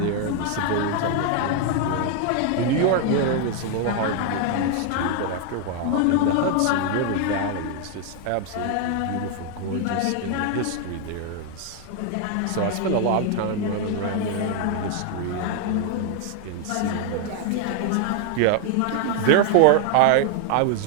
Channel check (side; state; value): both; different; correlation 0.00